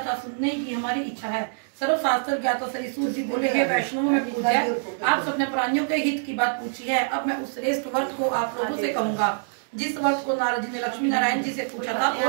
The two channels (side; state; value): left; silent; digital silence